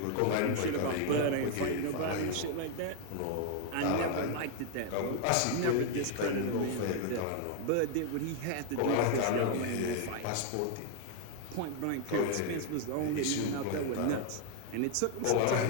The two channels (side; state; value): both; different; correlation 0.01